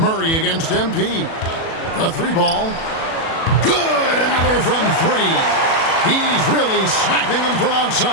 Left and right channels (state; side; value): late; right; 37 ms